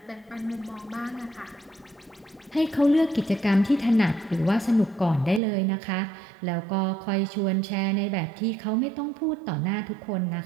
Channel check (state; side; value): drops out; left; at 5.4 s